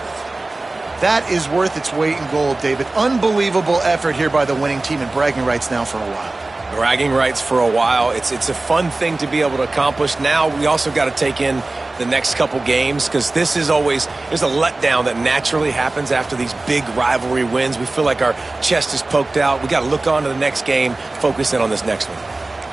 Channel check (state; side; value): quieter; left; 3.1 dB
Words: That is worth its weight in gold, David. Unbelievable effort here by the winning team, and bragging rights now for a while. Bragging rights for a while. It's a fun thing to be able to accomplish. Now we also got to take in the next couple games, because this is always, there's a letdown that naturally happens after these big rivalry wins. We feel like our chest is poked out. We got to look on to the next game, focus in on this next one.